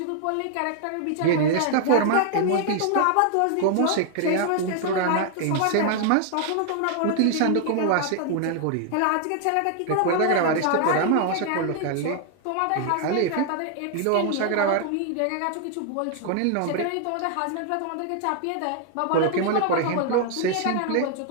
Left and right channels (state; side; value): different; both; correlation 0.00